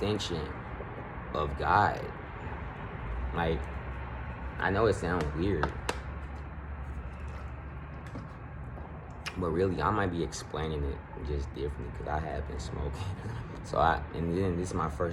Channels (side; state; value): both; identical; correlation 1.00